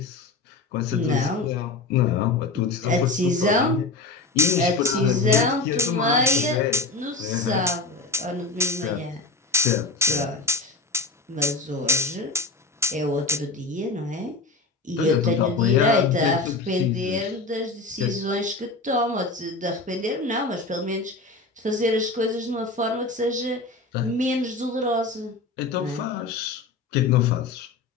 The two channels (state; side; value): quieter; right; 3.6 dB